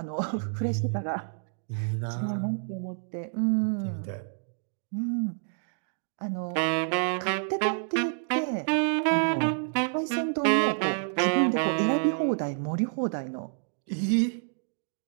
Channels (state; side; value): silent; left; digital silence